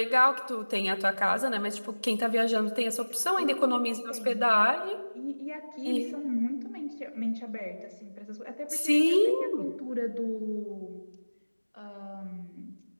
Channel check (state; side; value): inverted; both; correlation -1.00